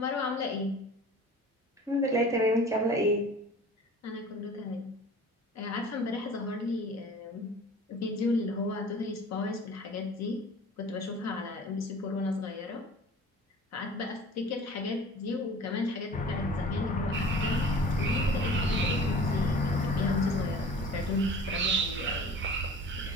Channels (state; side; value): normal; both; correlation 0.43